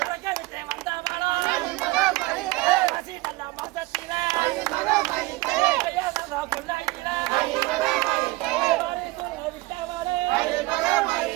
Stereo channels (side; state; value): left; quieter; 21.1 dB